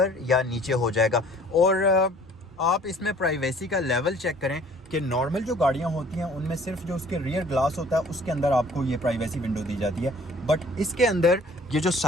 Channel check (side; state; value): both; normal; correlation 0.54